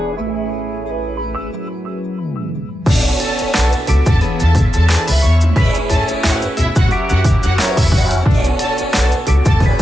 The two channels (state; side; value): normal; both; correlation 0.89